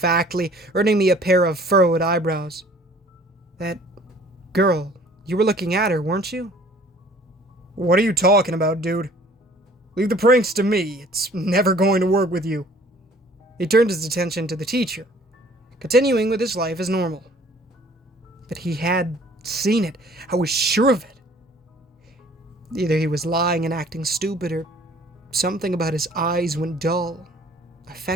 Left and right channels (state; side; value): normal; both; correlation 0.53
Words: earning me a pair of furrowed eyebrows. That girl, you were looking at her, weren't you? What are you talking about, dude? Leave the pranks to me. It's never going to work with you. He turned his attention to the teacher, continuing with his life as normal. But he had seen it. I was sure of it. Either he was lying and acting stupid, or something about his eyes when dull